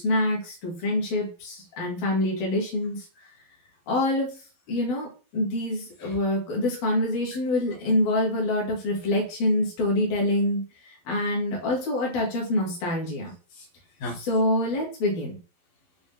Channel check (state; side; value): late; right; 11 ms